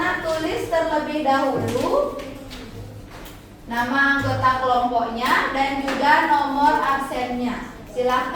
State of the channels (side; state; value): both; identical; correlation 1.00